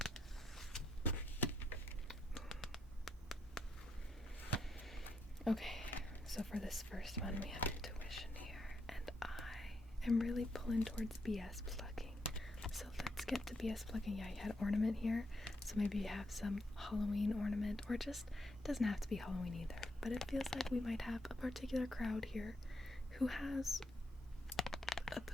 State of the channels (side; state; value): both; normal; correlation 0.79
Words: Okay, so for this first one we have intuition here, and I am really pulling towards BS plugging. So let's get to BS plugging. Yeah, you had ornament here, so maybe you have some Halloween ornament, or just, it doesn't have to be Halloween either, but it feels like we might have a particular crowd here who has a